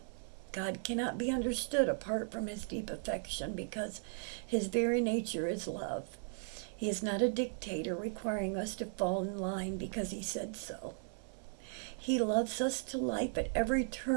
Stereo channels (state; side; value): silent; left; 53 dB below the other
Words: God cannot be understood apart from His deep affection because His very nature is love. He is not a dictator requiring us to fall in line because He said so. He loves us to life at every